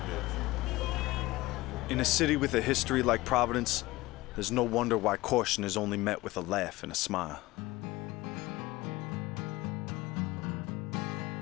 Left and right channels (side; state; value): right; quieter; 19.5 dB